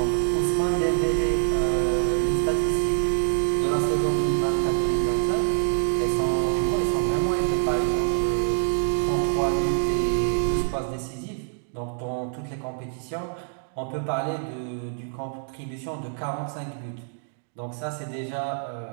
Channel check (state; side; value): silent; left; digital silence